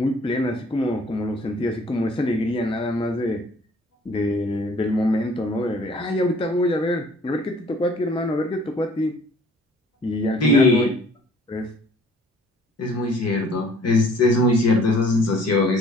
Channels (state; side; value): normal; both; correlation 0.55